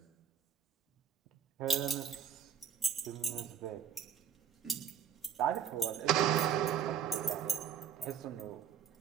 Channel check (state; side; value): quieter; left; 8.1 dB